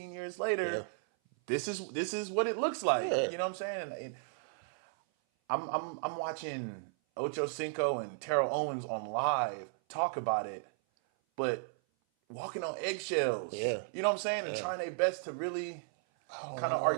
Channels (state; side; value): silent; left; 55 dB below the other